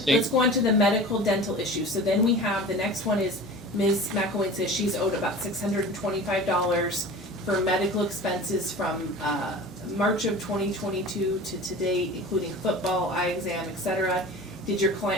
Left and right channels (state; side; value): normal; both; correlation 0.37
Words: let's go on to the medical dental issue. So then we have, the next one is Ms. McElwain says she's owed about $625 for medical expenses from, March of 2022 to today, including football, eye exam, etc. Did your